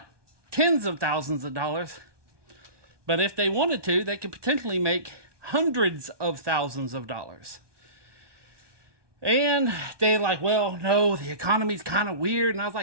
tens of thousands of dollars, but if they wanted to, they could potentially make hundreds of thousands of dollars. And they're like, well, no, the economy's kind of weird. And I was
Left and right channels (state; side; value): late; left; 1.2 ms